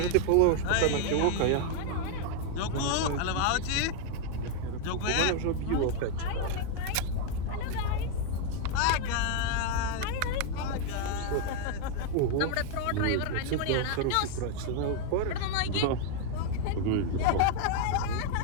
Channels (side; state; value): both; different; correlation 0.01